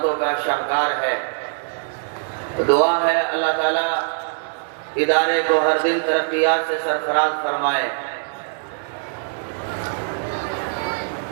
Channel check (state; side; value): silent; left; digital silence